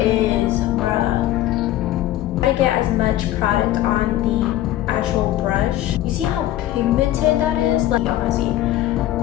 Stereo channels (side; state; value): right; quieter; 14.2 dB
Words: bruh. I get as much product on the actual brush. You see how pigmented that is? Like, y'all wanna see?